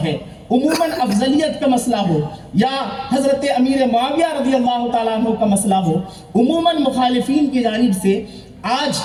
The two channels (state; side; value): identical; both; correlation 1.00